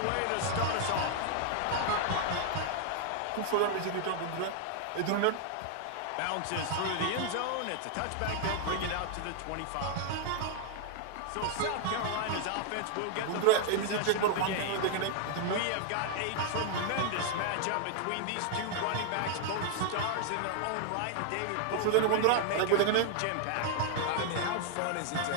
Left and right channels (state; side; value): different; both; correlation 0.00